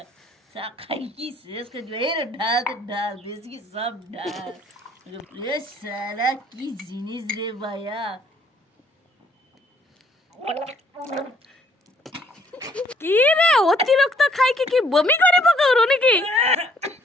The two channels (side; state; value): both; normal; correlation 0.63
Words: খাই কি শেষ করে দিবে এর ঢাল তো ঢাল বেশি কি সব ঢাল এ সারা কি জিনিস রে ভাইয়া কি রে অতিরিক্ত খাই কি বমি করে পকাও নাকি